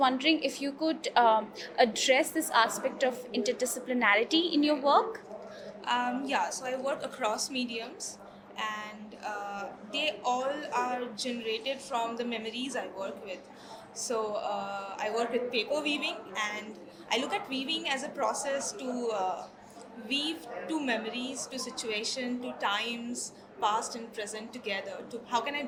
if you could address this aspect of interdisciplinarity in your work. So I work across mediums, and they all are generated from the memories I work with. I work with paper weaving, and I look at weaving as a process to weave two memories, to situation, to times past and present together. To how can I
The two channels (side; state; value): both; identical; correlation 1.00